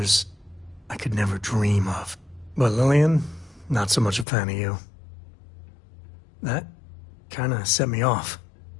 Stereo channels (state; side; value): drops out; right; at 4.2 s